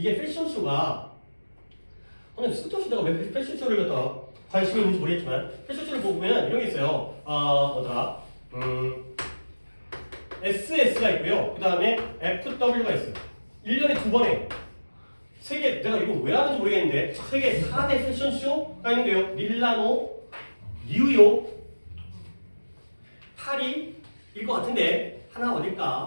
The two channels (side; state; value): both; inverted; correlation -1.00